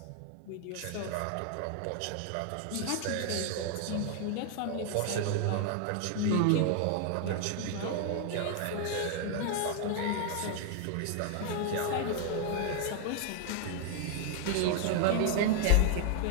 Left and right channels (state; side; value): different; both; correlation 0.00